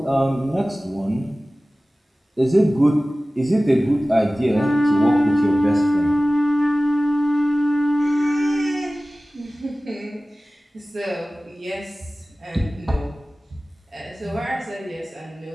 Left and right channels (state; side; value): normal; both; correlation 0.97